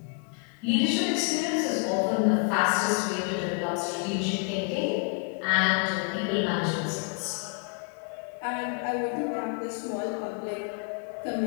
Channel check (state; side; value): quieter; right; 37.4 dB